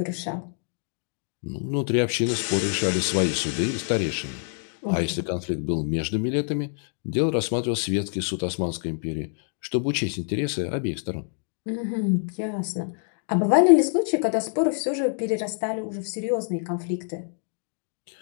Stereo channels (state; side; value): silent; right; 61 dB below the other